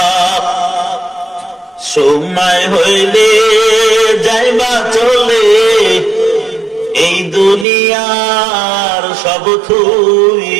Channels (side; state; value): left; drops out; at 7.7 s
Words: সময় হইলে যাইবা চলে এই দুনিয়ার সব